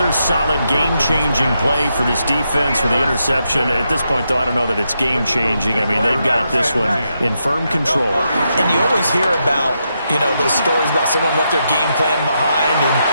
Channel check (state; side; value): inverted; both; correlation -0.83